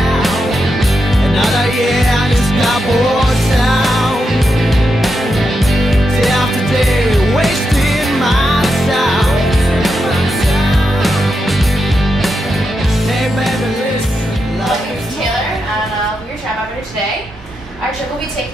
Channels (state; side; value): normal; both; correlation 0.85